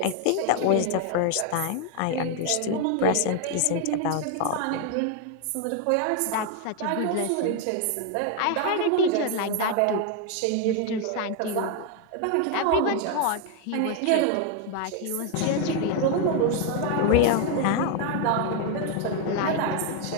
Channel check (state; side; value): different; both; correlation 0.01